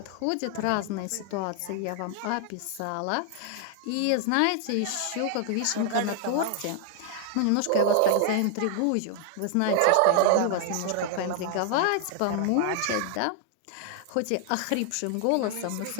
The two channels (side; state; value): both; different; correlation 0.00